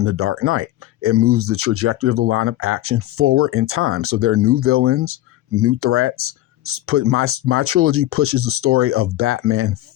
the Dark Knight. It moves the trajectory of the line of action forward in time. So there are new villains, new threats. My trilogy pushes the story of Batman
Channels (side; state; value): right; quieter; 15.2 dB